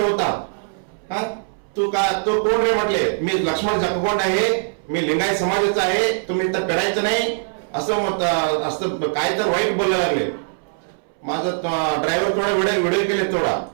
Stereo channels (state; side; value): silent; left; 65 dB below the other